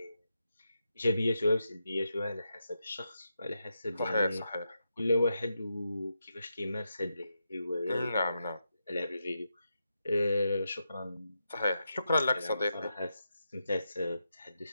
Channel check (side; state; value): both; inverted; correlation -0.86